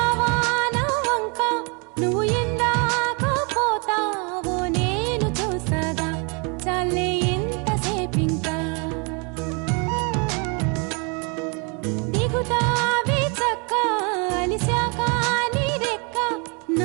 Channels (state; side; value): quieter; left; 33.9 dB